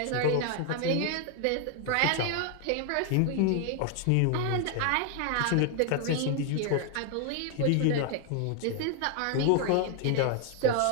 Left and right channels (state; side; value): different; both; correlation 0.00